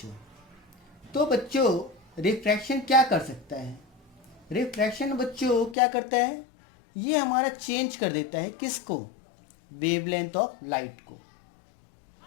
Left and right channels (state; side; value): drops out; right; at 5.8 s